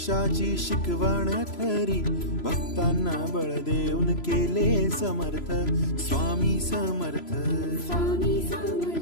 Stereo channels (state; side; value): late; right; 3.0 ms